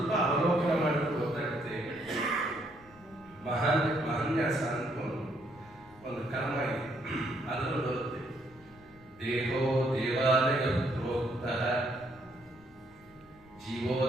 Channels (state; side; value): noise; left; rumble, 26 dB below the sound